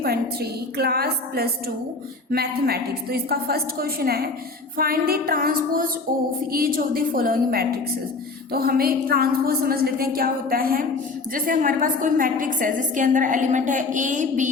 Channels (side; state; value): right; quieter; 3.8 dB